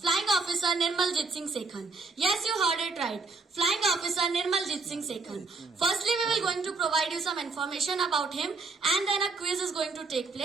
Flying Officer Nirmaljit Singh Sekhan. Yes, you heard it right. Flying Officer Nirmaljit Singh Sekhan. Firstly, we will going to provide you some information about him and then a quiz is going to take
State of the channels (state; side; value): quieter; left; 4.0 dB